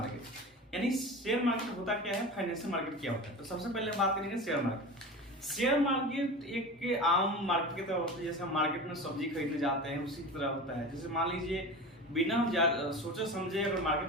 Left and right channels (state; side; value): normal; both; correlation 0.31